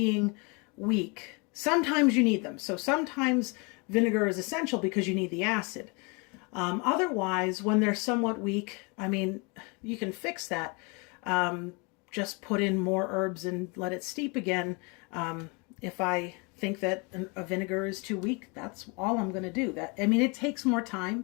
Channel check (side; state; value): right; quieter; 30.8 dB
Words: weak, sometimes you need them. So sometimes vinegar is essential because you need the acid. Otherwise, when they're somewhat weak, I mean, you can fix that. Just put in more herbs and let it steep again. If I think that a vinegar is too weak, that's all I'm going to do. I mean, it takes more time